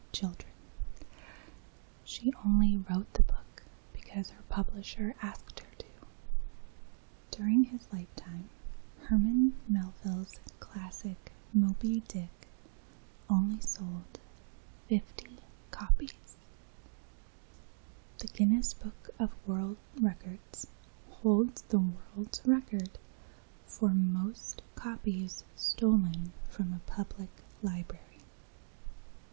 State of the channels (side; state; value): left; silent; digital silence